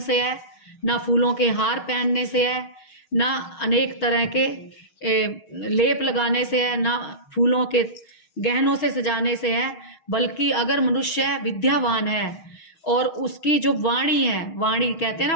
है, ना फूलों के हार पहनने से है, ना अनेक तरह के लेप लगाने से है, ना फूलों के गहनों से सजाने से है, बल्कि अगर मनुष्य विद्यावान है और उसकी जो वाणी है, वाणी कहते हैं ना,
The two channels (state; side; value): late; right; 6.1 ms